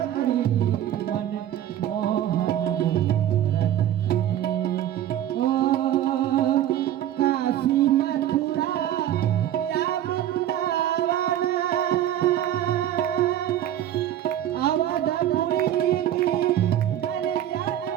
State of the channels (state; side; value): quieter; left; 11.7 dB